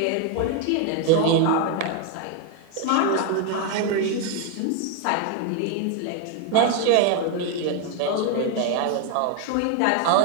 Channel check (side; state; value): both; different; correlation 0.01